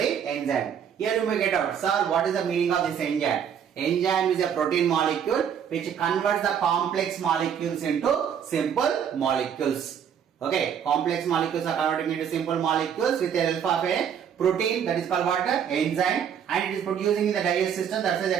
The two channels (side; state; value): left; quieter; 8.3 dB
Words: enzyme. Here you may get out, sir, what is the meaning of this enzyme? Enzyme is a protein molecule which converts the complex molecules into simple molecules. Okay, complex molecules are converting into simple molecules with the help of a protein, that is called what? Enzyme, and it is producing in the digestive system. That's why they